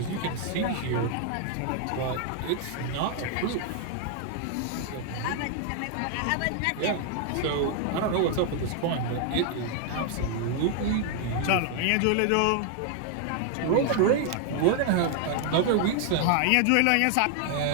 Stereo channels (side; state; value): both; different; correlation 0.00